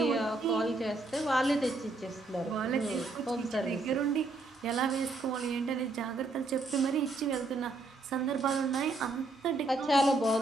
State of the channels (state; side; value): quieter; left; 3.2 dB